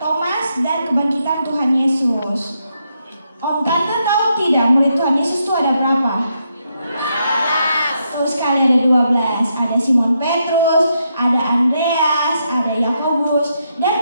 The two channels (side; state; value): both; inverted; correlation -0.80